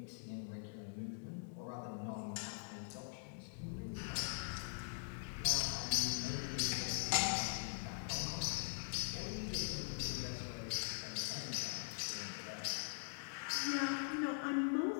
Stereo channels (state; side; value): silent; right; digital silence